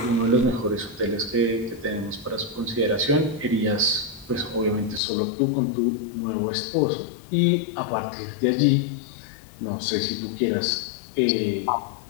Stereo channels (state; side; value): drops out; right; at 5.0 s